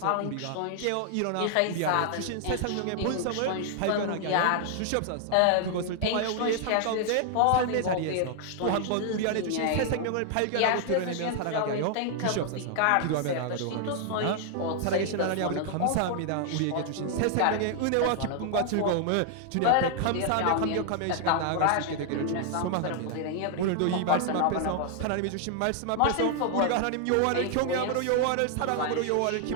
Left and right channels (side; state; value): both; different; correlation 0.00